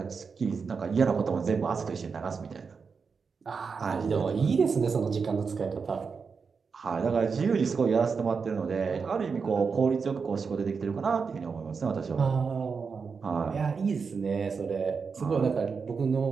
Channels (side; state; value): left; quieter; 5.4 dB